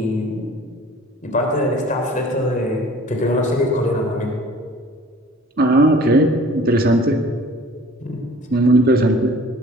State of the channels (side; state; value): both; normal; correlation 0.48